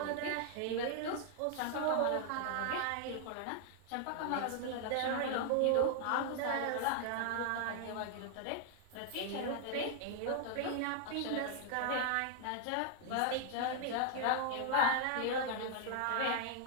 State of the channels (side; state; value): both; different; correlation 0.00